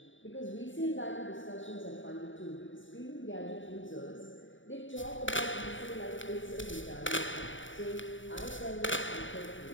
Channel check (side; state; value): right; late; 0.56 ms